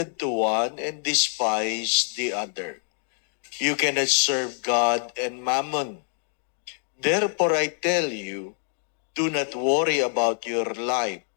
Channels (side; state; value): right; silent; 59 dB below the other